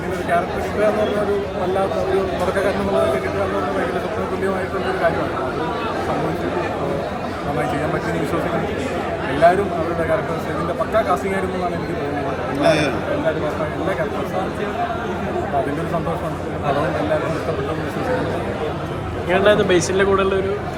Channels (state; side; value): identical; both; correlation 1.00